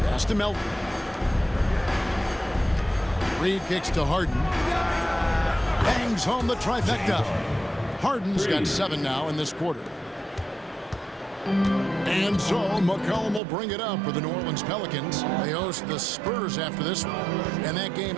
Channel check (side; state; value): left; drops out; at 13.4 s